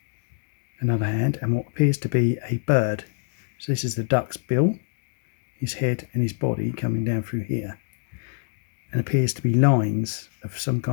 another hand, and what appears to be a bird. So this is the duck's bill, his head and his body coming down through here. And appears to be lines of some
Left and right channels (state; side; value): silent; right; 62 dB below the other